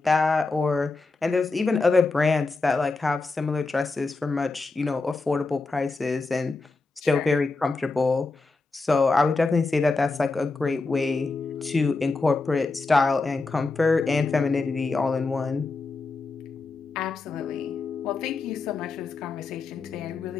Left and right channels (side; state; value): right; quieter; 3.7 dB